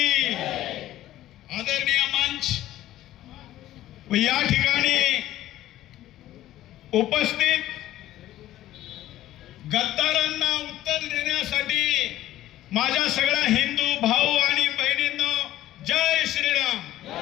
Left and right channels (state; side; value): quieter; right; 14.1 dB